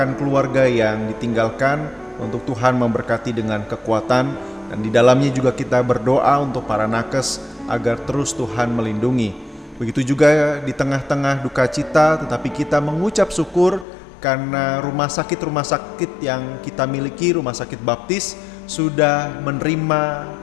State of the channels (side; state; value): right; drops out; at 13.9 s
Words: keluarga yang ditinggalkan untuk Tuhan memberkati dengan kekuatan, dan di dalamnya juga kita berdoa untuk para nakes agar terus Tuhan melindungi. Begitu juga di tengah-tengah duka cita, tetapi kita mengucap syukur karena rumah sakit yang kita miliki, rumah sakit baptis, sudah menerima